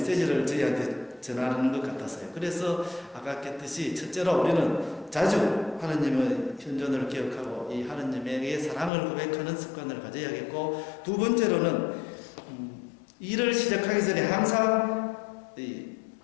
저희한테 전하는 것 같았어요. 그래서 아까 했듯이 첫째로 우리는 자주 하느님의 현존을 기억하고 이 하느님에게 사랑을 고백하는 습관을 가져야겠고, 두 번째로는 일을 시작하기 전에 항상 이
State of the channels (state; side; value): drops out; right; at 8.9 s